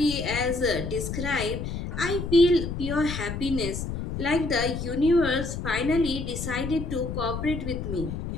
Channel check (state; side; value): noise; left; rumble, 5 dB below the sound